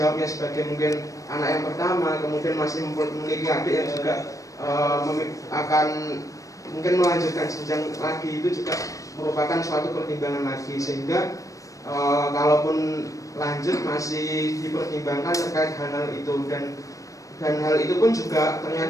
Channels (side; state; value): right; late; 0.16 ms